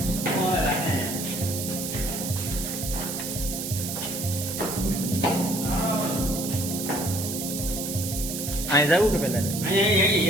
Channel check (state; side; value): noise; right; hiss, 5 dB below the sound